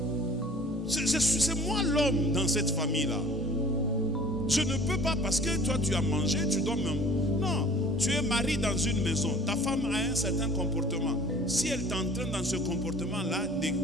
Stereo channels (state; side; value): normal; both; correlation 0.48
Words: C'est moi l'homme dans cette famille-là. Je ne peux pas parce que toi tu as mangé, tu dois même. Non, tu es marié dans une maison. Ta femme a un certain comportement. Si elle t'entraîne dans ce comportement-là